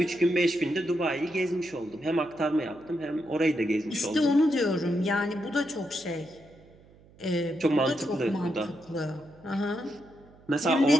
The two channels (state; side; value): noise; right; hum, 26 dB below the sound